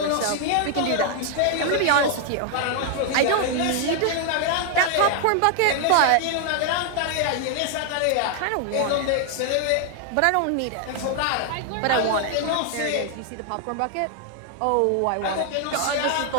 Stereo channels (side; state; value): both; different; correlation 0.00